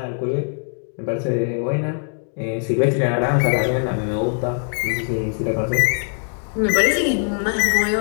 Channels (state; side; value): silent; right; 65 dB below the other